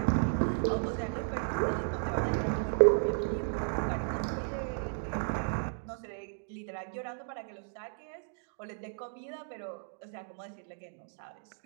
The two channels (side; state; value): left; silent; digital silence